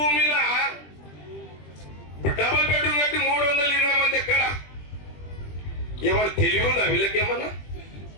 డబుల్ బెడ్రూమ్ కట్టి 320 మంది ఎక్కడ ఏమన్నా తెలివి ఉందా వీళ్ళకేమన్నా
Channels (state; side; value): late; right; 20 ms